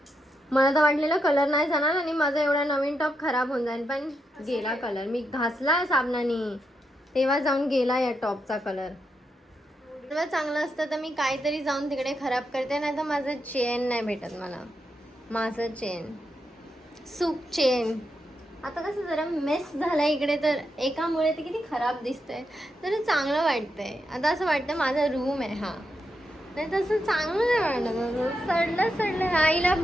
मला तर वाटलेलं कलर नाही जाणार आणि माझा एवढा नवीन टॉप खराब होऊन जाईल पण गेला कलर. मी घासला साबणाने तेव्हा जाऊन गेला या टॉपचा कलर. तेव्हा चांगलं असतं तर मी काहीतरी जाऊन तिकडे खराब करते नाही तर माझं चेन नाही भेटत मला. माझं चेन सूप चेन. आता कसं जरा मेस झालं इकडे, तर एकामुळे ते किती खराब दिसतंय, तर चांगलं वाटतंय. आता असं वाटतं माझा रूम आहे हा, नाही तसं चांगलं नाही वाटत. सडलं आईला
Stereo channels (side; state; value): both; normal; correlation 0.84